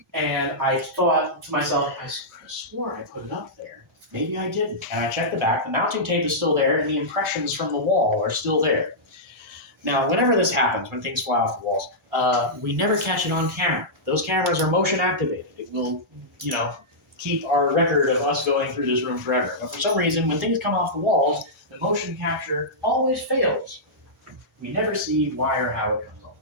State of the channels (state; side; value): normal; both; correlation -0.13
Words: And I thought to myself, I swore I put it up there. Maybe I didn't. And I checked the back. The mounting tape is still there, and the impressions from the wall are still there. Now, whenever this happens, when things fly off the walls, we never catch it on camera. Those cameras are motion activated. It will, keep our record of us going through this room forever. But for some reason, when things come off the walls, the motion capture always fails. We never see why or how it comes off